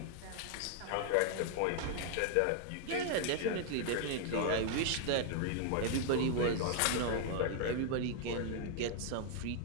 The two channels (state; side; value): different; both; correlation 0.00